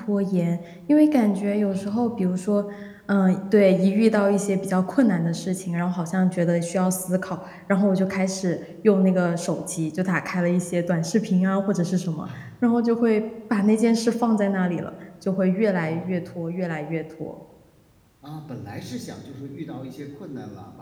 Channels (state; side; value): identical; both; correlation 1.00